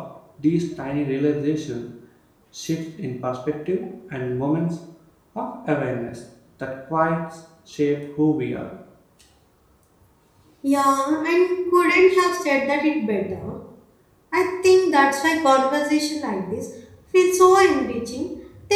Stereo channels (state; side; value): identical; both; correlation 1.00